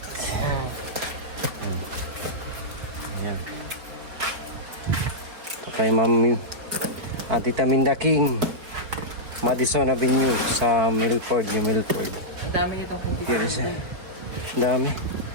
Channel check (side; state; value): left; late; 4.2 ms